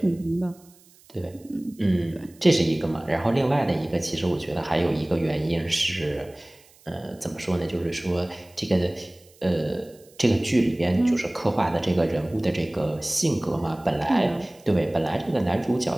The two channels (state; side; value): noise; right; hiss, 28 dB below the sound